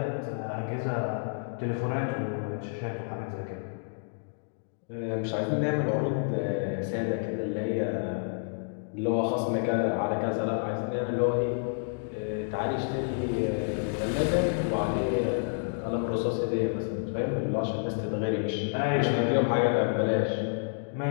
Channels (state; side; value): silent; right; digital silence